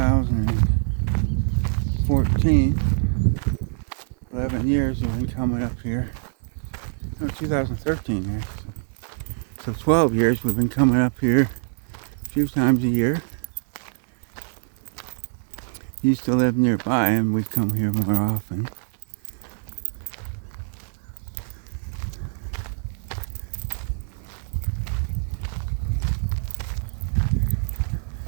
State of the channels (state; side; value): silent; left; digital silence